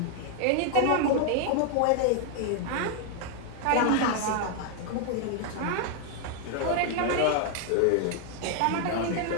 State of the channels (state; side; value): different; both; correlation 0.00